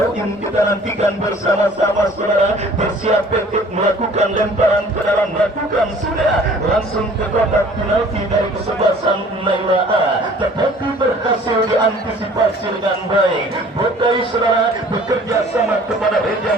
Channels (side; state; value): both; normal; correlation 0.51